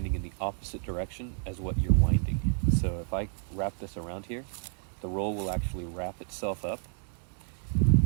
in the opposite direction as what you're winding. So if I wrap this around here, the roll will actually wrap itself up,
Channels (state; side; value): silent; left; 58 dB below the other